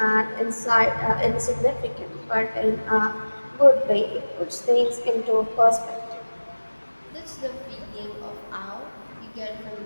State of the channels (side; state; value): both; inverted; correlation -1.00